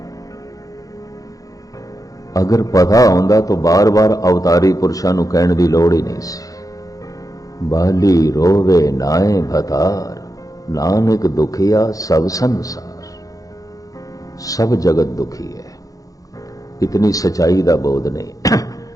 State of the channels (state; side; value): late; right; 0.17 ms